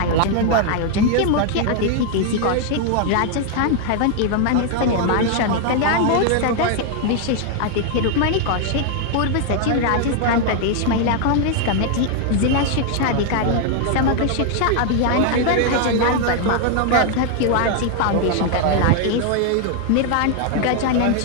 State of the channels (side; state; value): both; different; correlation 0.00